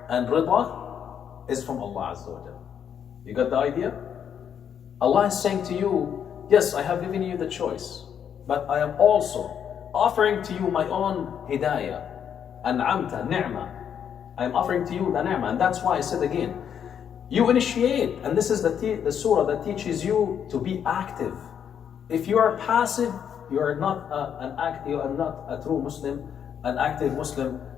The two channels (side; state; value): right; quieter; 8.4 dB